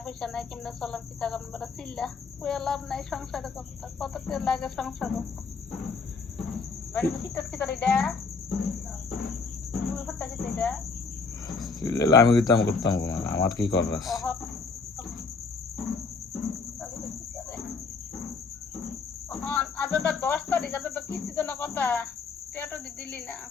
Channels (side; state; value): right; quieter; 4.6 dB